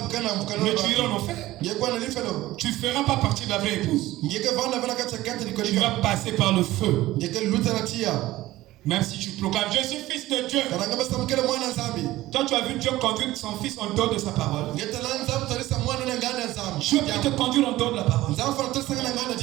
iras en enfer. Tu ne feras pas partie de la vraie épouse. Tu vas passer par le feu. Même si tu proclames, je suis fils de Dieu. Toi, tu as vu Dieu conduire son fils en dehors de sa parole. Dieu peut te conduire en dehors de la parole.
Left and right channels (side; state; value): left; quieter; 16.7 dB